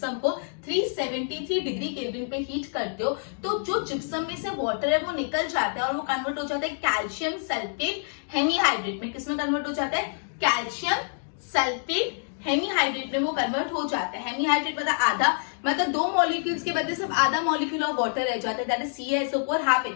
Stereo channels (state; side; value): silent; right; digital silence